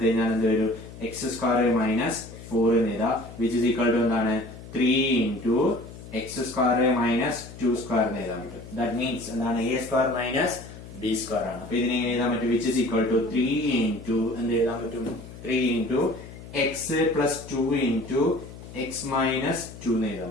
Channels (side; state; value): left; noise; hum, 15 dB below the sound